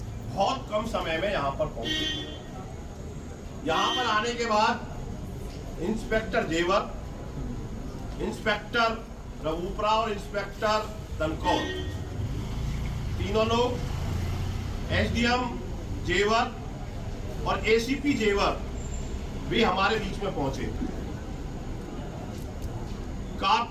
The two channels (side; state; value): both; identical; correlation 1.00